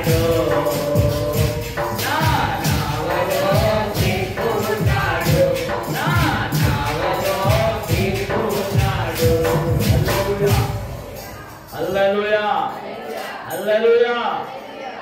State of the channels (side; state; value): both; identical; correlation 1.00